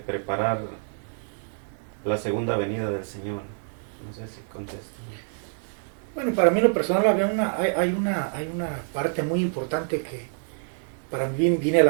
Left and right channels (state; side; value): silent; left; digital silence